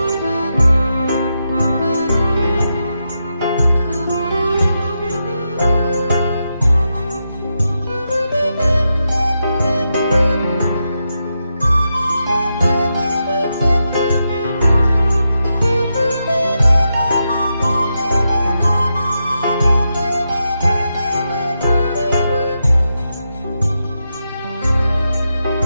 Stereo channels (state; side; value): inverted; both; correlation -0.86